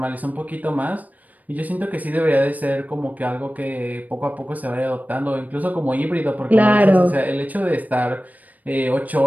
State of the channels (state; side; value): late; left; 0.078 ms